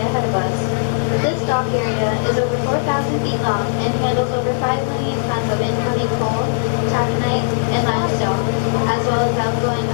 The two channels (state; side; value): silent; right; digital silence